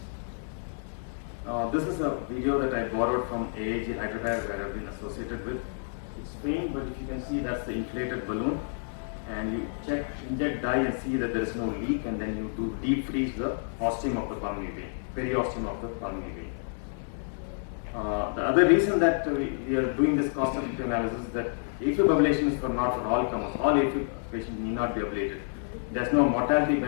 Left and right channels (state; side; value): silent; right; digital silence